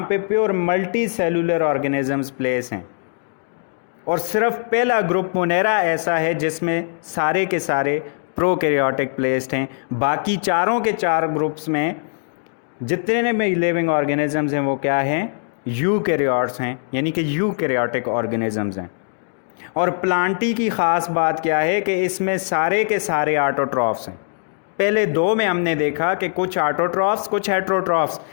पे pure multi cellular organisms place हैं, और सिर्फ पहला ग्रुप मोनेरा ऐसा है जिसमें सारे के सारे प्रोकैरियोटिक प्लेस्ड हैं। बाकी चारों के चार ग्रुप्स में जितने में लिविंग ऑर्गेनिजम्स हैं वो क्या हैं, यूकैरियोट्स हैं, यानी कि यूकैरियोटिक ऑर्गेनिजम्स हैं। और प्लांटी की ख़ास बात क्या है कि इसमें सारे के सारे ऑटोट्रॉफ्स हैं। पहले दो में हमने देखा कि कुछ ऑटोट्रॉफ्स कुछ हेट्रोट्रॉफ्स,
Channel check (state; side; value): silent; right; digital silence